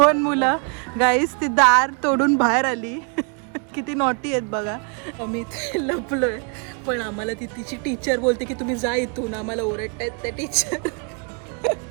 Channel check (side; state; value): left; quieter; 38.6 dB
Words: मुलं गाईस ती दार तोडून बाहेर आली. किती नॉटी आहेत बघा. मी लपलोय पण आम्हाला ती तिची टीचर बोलते की तुम्ही जा इथून, आम्हाला ओरडतायत त्या teacher.